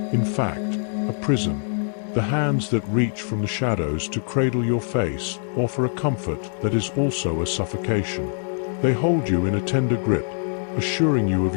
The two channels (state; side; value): silent; right; digital silence